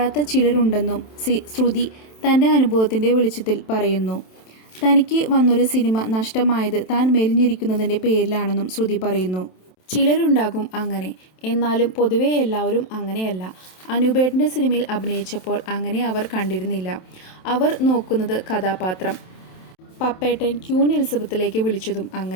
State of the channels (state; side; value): late; right; 27 ms